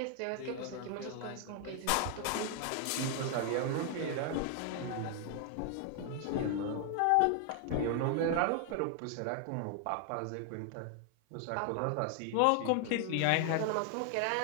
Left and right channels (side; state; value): both; different; correlation 0.00